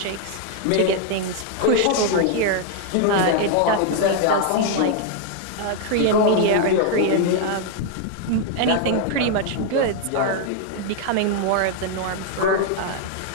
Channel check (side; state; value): both; different; correlation 0.00